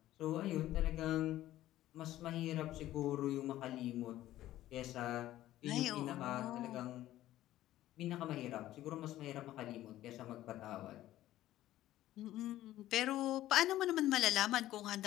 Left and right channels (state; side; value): quieter; right; 14.3 dB